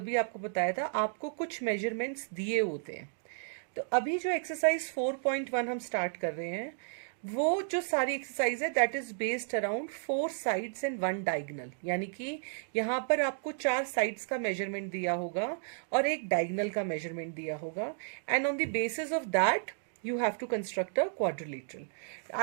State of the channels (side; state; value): left; silent; digital silence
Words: भी आपको बताया था, आपको कुछ मेजरमेंट्स दिए होते हैं. तो अभी जो एक्सरसाइज 4.1 हम स्टार्ट कर रहे हैं, वो जो सारी एक्सरसाइज है that is based around 4 sides and 1 diagonal. यानी कि यहाँ पर आपको 4 साइड्स का मेजरमेंट दिया होगा और एक डायगनल का मेजरमेंट दिया होगा, and on the basis of that you have to construct a quadrilateral.